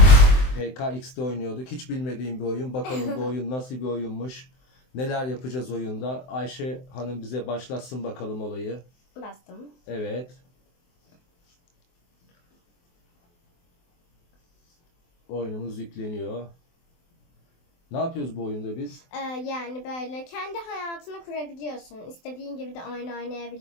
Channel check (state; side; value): late; right; 23 ms